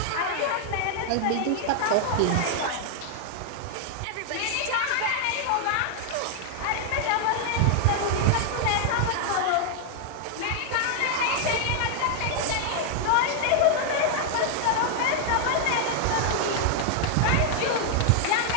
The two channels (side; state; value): both; different; correlation 0.00